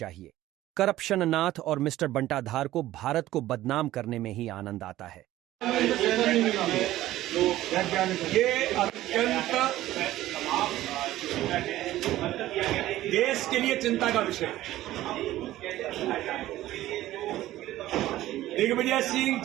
करप्शन नाथ और मिस्टर बंटाधार को भारत को बदनाम करने में ही आनंद आता है। ये अत्यंत देश के लिए चिंता का विषय है। दिग्विजय सिंह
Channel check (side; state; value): left; quieter; 15.0 dB